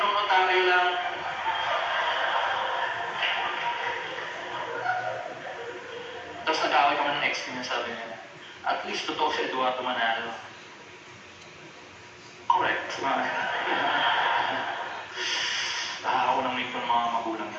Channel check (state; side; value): identical; both; correlation 1.00